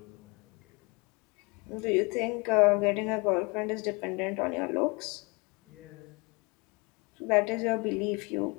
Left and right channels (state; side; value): quieter; right; 28.6 dB